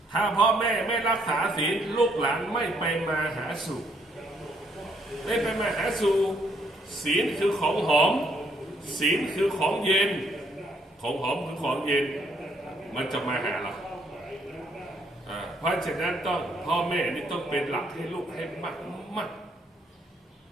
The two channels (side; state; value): both; normal; correlation 0.69